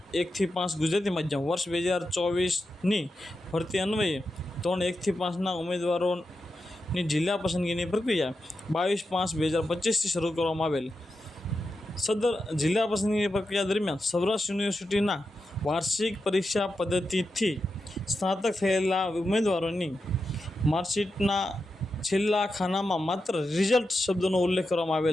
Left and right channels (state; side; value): normal; both; correlation 0.89